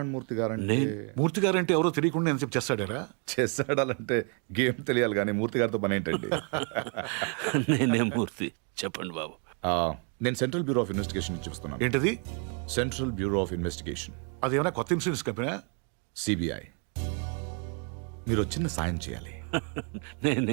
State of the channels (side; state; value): left; quieter; 38.7 dB